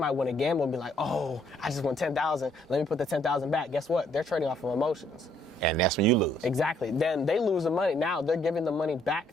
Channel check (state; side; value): normal; both; correlation 0.67